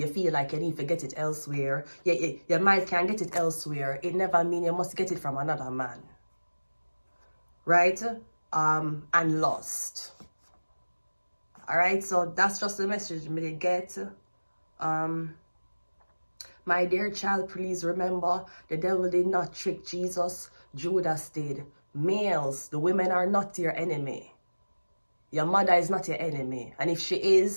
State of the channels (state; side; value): inverted; both; correlation -1.00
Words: feel like you need to get it elsewhere. Your mind can get it elsewhere. It never means you must get it from another man. Right? And lost. Alright, so that's just the message me get. My dear child, please remember, the devil did not trick Jesus. Judas did. Males, the women are not your enemy. Your mother is not your enemy. And if she